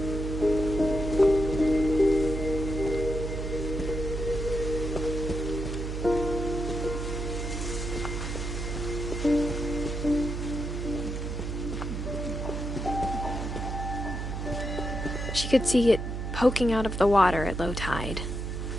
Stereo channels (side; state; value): right; noise; hum, 4 dB below the sound